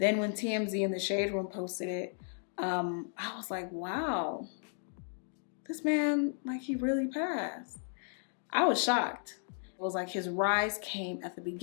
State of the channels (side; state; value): right; silent; 55 dB below the other